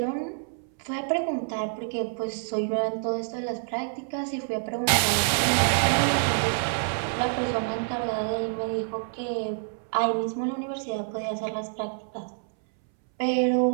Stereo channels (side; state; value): left; silent; 60 dB below the other